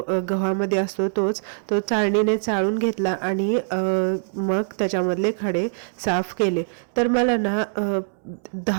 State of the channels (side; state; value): left; silent; digital silence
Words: गव्हामध्ये असतो तो चाळणीने चाळून घेतला आणि मग त्याच्यामधले खडे साफ केले. तर मला ना